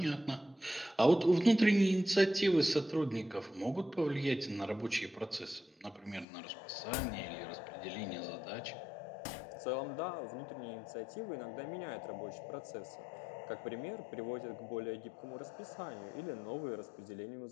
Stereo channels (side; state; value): right; drops out; at 6.2 s